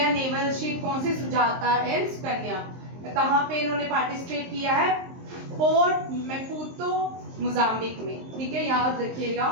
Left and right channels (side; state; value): left; late; 23 ms